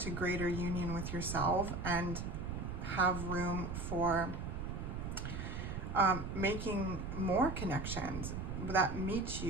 greater union with yourself and have room for making more connections that meet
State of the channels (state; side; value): noise; right; rumble, 5 dB below the sound